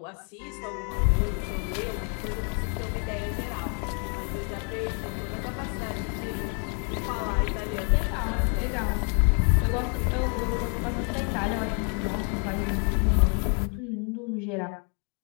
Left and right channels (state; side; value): quieter; right; 39.8 dB